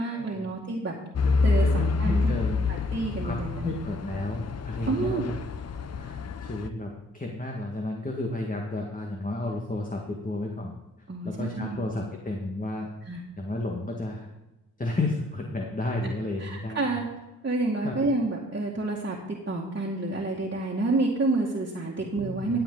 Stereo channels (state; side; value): normal; both; correlation 0.61